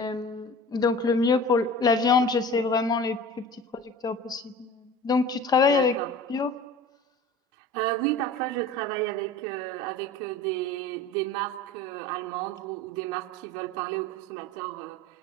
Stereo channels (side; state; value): both; normal; correlation 0.39